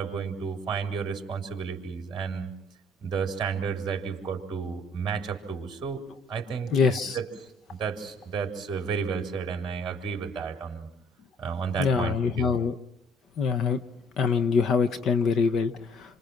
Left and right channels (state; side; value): normal; both; correlation 0.60